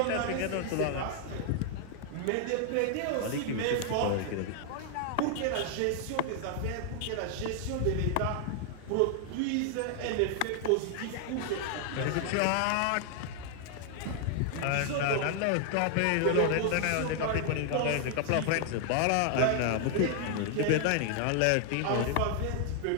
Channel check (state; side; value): different; both; correlation 0.00